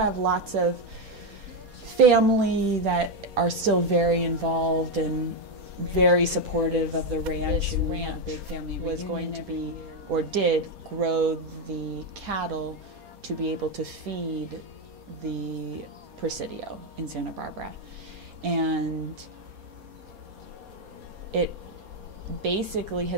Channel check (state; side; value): late; left; 4.2 ms